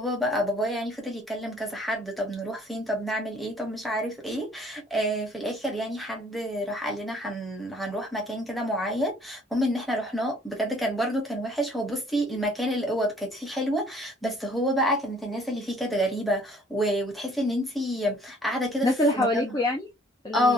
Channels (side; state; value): both; normal; correlation 0.58